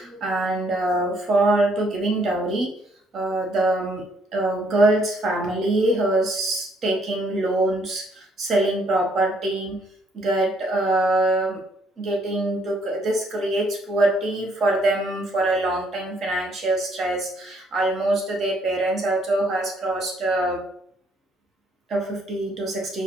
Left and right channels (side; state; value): both; normal; correlation 0.67